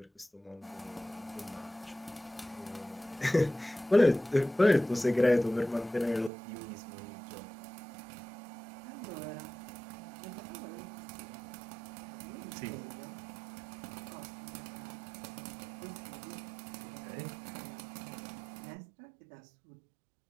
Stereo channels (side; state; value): left; drops out; at 6.3 s